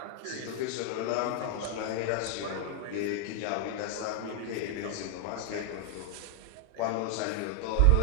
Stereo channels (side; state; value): both; different; correlation 0.00